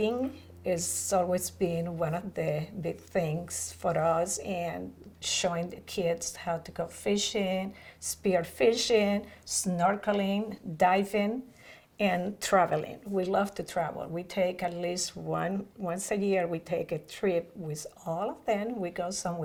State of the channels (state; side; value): identical; both; correlation 1.00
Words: has always been one of the big things for us, and showing the kids how to go fishing, spear fishing, snorkeling, diving, and traveling. We love to travel. We take at least once a year, we take a trip with all of them. We go